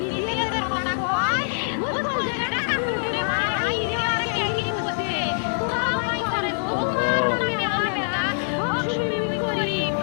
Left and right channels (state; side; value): silent; right; 59 dB below the other